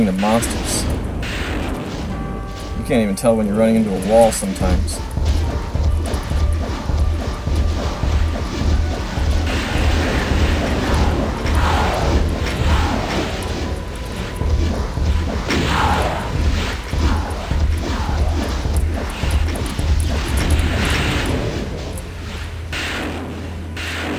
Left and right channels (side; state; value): both; identical; correlation 1.00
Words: the monsters. You can't even tell when you're running into a wall sometimes.